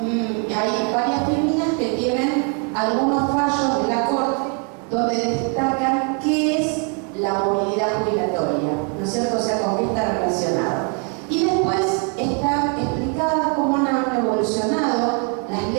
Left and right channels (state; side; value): quieter; left; 37.2 dB